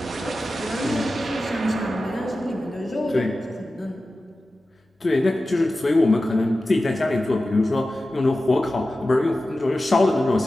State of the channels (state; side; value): normal; both; correlation 0.94